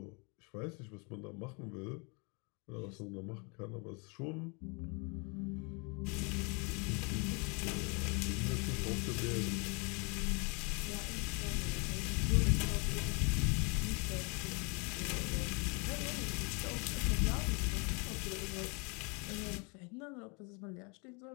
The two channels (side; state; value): right; quieter; 32.8 dB